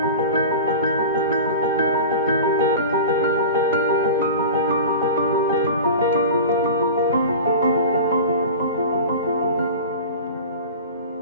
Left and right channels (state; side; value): inverted; both; correlation -0.33